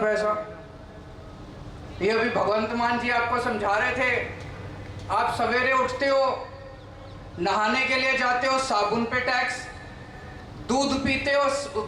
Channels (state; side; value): identical; both; correlation 1.00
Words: ये अभी भगवंत मान जी आपको समझा रहे थे, आप सवेरे उठते हो, नहाने के लिए जाते हो, साबुन पे टैक्स, दूध पीते हो